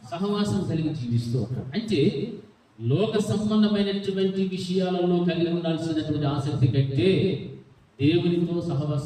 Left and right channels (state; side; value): identical; both; correlation 1.00